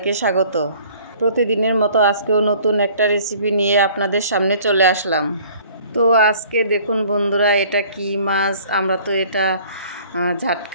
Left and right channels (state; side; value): inverted; both; correlation -0.53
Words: স্বাগত। প্রতিদিনের মতো আজকেও নতুন একটা রেসিপি নিয়ে আপনাদের সামনে চলে আসলাম। তো আজকে দেখুন বন্ধুরা, এটা কি মাছ? আমরা তো এটা